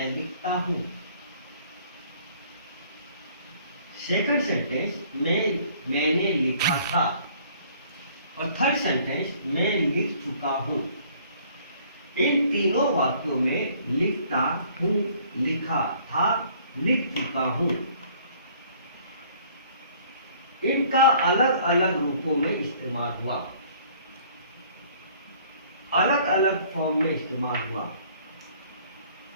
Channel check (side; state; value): both; inverted; correlation -0.57